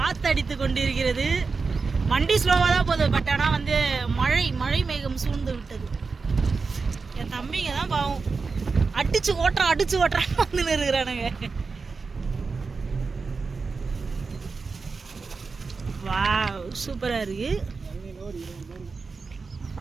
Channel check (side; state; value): left; quieter; 4.5 dB